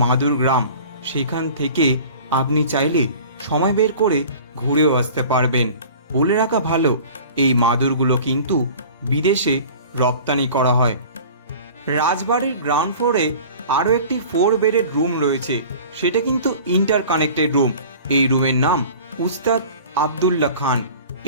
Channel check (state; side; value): inverted; both; correlation -0.42